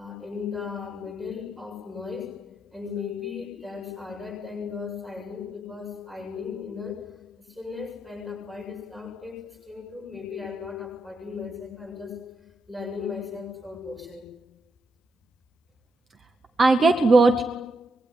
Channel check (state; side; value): normal; both; correlation 0.81